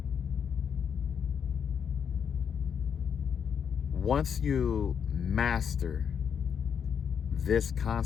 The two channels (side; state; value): right; quieter; 7.5 dB